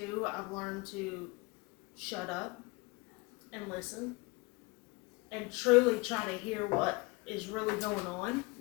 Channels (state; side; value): quieter; right; 25.8 dB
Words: I've learned to shut up and listen and truly try to hear what is really going on.